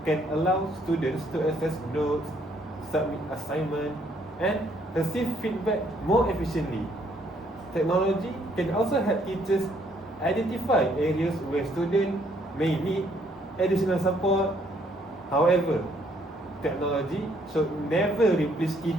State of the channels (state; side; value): normal; both; correlation 0.67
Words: can allow students to access notes, submit assignments, and receive feedback more efficiently. Technology can also help teachers identify areas where students may need additional support. However, technology should never replace